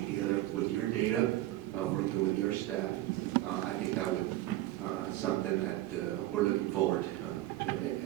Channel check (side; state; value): left; quieter; 16.0 dB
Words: together with your data, working with your staff. I think that would something that we're looking forward to.